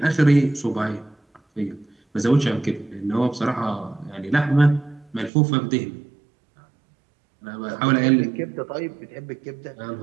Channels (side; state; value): left; drops out; at 5.3 s